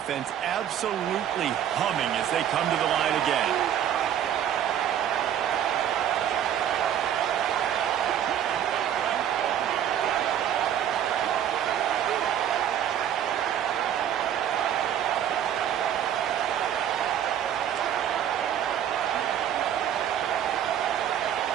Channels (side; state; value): left; quieter; 10.1 dB